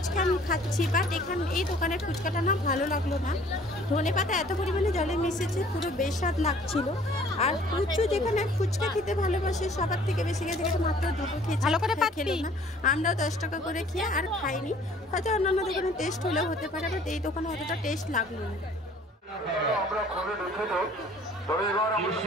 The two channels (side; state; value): both; normal; correlation 0.54